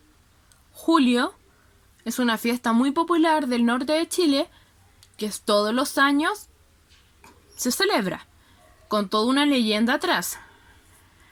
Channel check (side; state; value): both; identical; correlation 1.00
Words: julio. Es una fiesta muy popular del norte de Chile que todos los años se celebra, con toda una leyenda atrás.